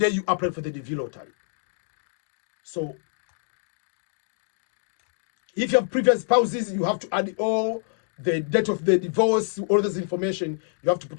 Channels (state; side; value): silent; right; digital silence